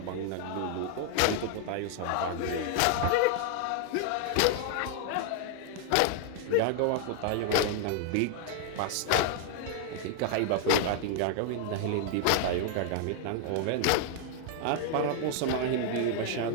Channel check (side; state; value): both; different; correlation 0.00